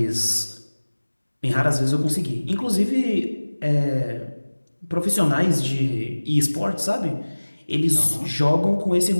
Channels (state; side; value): inverted; both; correlation -1.00